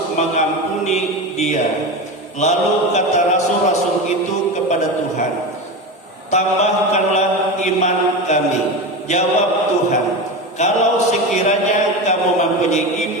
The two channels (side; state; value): both; normal; correlation 0.22